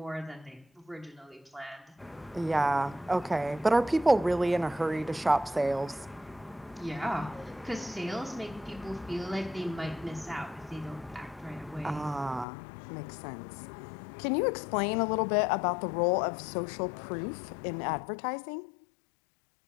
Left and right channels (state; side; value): drops out; right; at 12.5 s